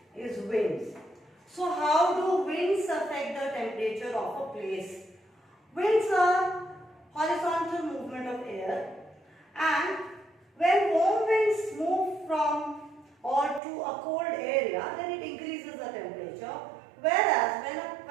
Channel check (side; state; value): left; drops out; at 13.6 s